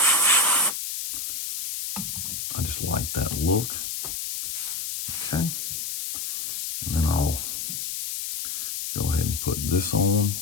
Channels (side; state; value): left; noise; hiss, 3 dB below the sound